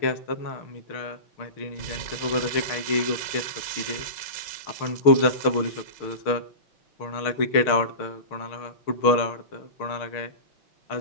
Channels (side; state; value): right; late; 6.5 ms